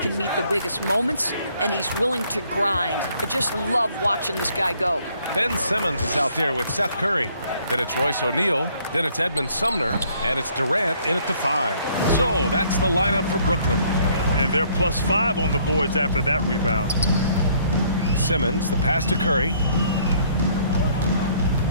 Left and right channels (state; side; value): inverted; both; correlation -0.64